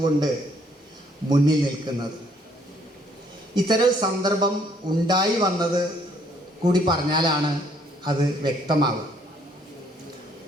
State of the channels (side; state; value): both; normal; correlation 0.65